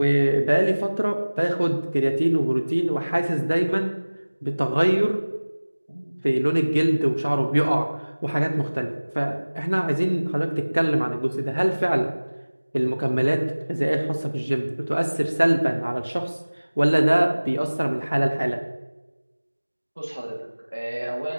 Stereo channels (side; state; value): both; inverted; correlation -1.00